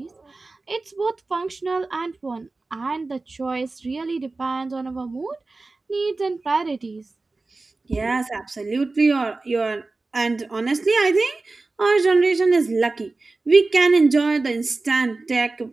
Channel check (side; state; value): left; quieter; 3.5 dB